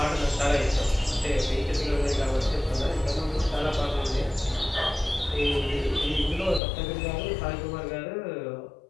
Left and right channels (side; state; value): right; drops out; at 6.6 s